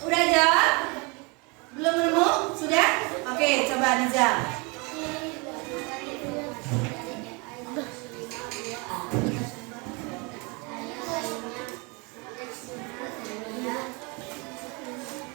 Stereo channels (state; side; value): quieter; left; 29.6 dB